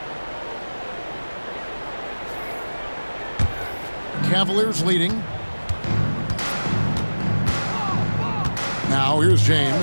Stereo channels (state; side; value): inverted; both; correlation -1.00